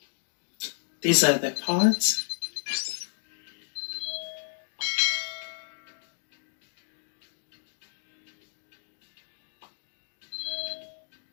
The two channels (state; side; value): silent; right; digital silence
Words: These are the parts.